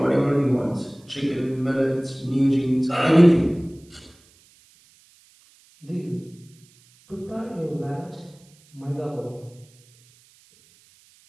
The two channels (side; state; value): right; noise; hiss, 30 dB below the sound